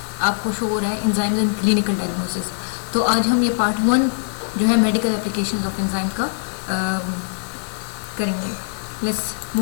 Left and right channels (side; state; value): right; silent; digital silence